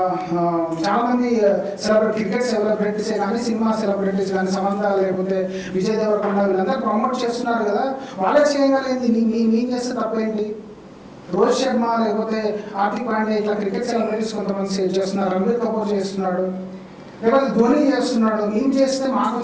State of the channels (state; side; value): identical; both; correlation 1.00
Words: చాలామంది క్రికెట్ సెలబ్రిటీసే కానీ, సినిమా సెలబ్రిటీస్ కానీ, సమంత లేకపోతే విజయ్ దేవరకొండ వీళ్ళందరూ ప్రమోట్ చేస్తున్నారు కదా, వాళ్ళే చేయగలిగింది మేము చేస్తే తప్పేంటి? రోహిత్ శర్మ లేకపోతే హార్దిక్ పాండ్యా ఇట్లా క్రికెట్ సెలబ్రిటీస్ కొంతమంది చేస్తున్నారు, రణబీర్ కపూర్ చేస్తున్నాడు, లేకపోతే ధోని చేస్తున్నాడు. మేము చేస్తే మాకు